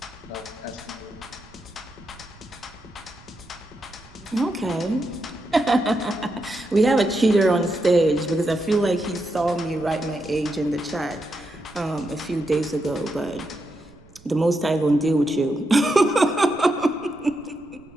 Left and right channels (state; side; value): noise; right; rumble, 25 dB below the sound